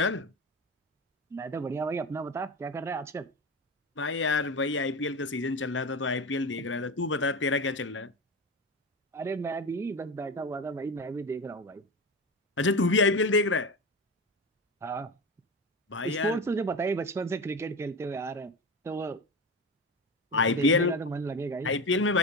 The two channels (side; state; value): both; normal; correlation 0.23